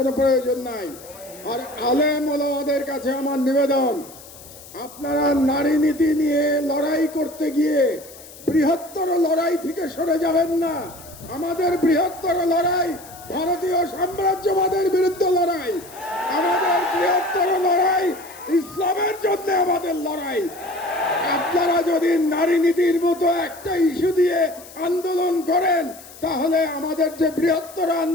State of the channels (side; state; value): left; noise; hiss, 19 dB below the sound